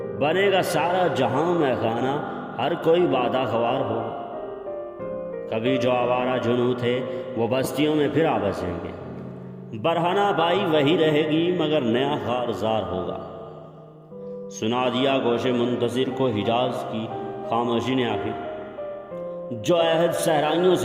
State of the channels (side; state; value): both; identical; correlation 1.00